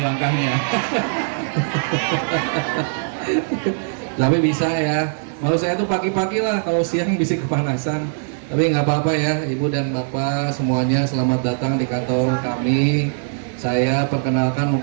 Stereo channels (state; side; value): silent; left; digital silence